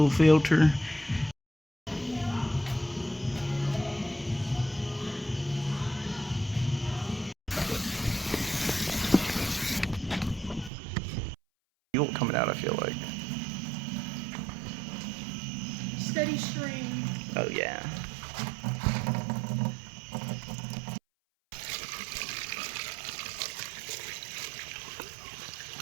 filter. Fuel coming out, I feel like. Steady stream. Oh yeah.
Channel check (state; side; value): drops out; left; at 10.7 s